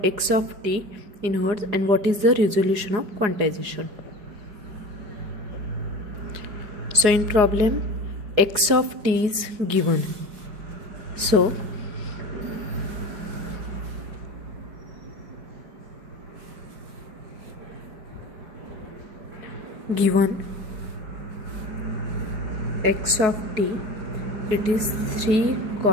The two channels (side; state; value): left; late; 4.8 ms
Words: x of t in hertz, and what is the resolution of quantization? So in problem, x of t is given. So given x of t, it is 3